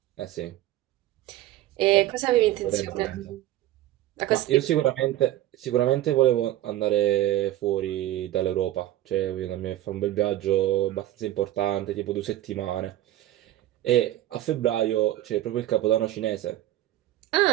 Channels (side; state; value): left; quieter; 14.1 dB